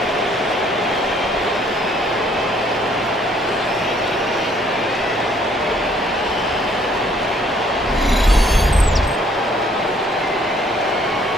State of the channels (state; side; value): normal; both; correlation 0.63